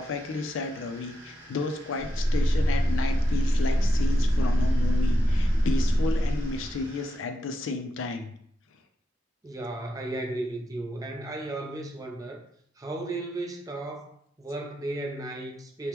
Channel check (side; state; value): both; normal; correlation 0.85